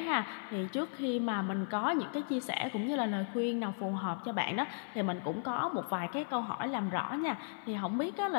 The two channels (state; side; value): silent; right; digital silence